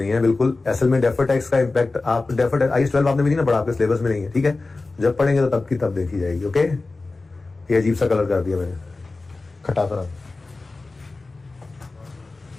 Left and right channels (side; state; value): right; quieter; 3.5 dB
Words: है बिल्कुल। असल में डेफर टैक्स का इंपैक्ट आप डेफर IAS 12 आपने भी नहीं ना पढ़ा, आपके सिलेबस में नहीं है, ठीक है। जब पढ़ेंगे तो तब की तब देखी जाएगी। ओके, ये अजीब सा कलर कर दिया मैंने, खटा तरह।